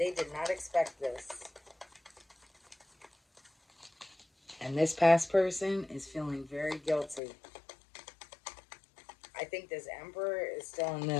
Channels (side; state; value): right; drops out; at 7.2 s